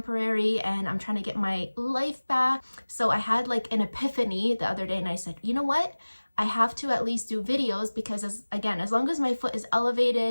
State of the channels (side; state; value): both; inverted; correlation -1.00